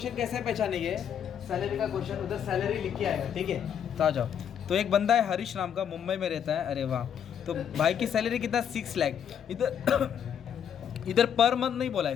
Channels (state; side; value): quieter; right; 8.6 dB